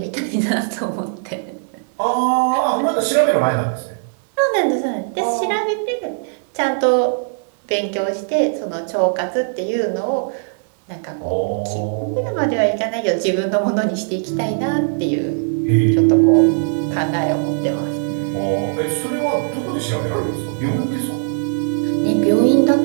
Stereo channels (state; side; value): silent; left; digital silence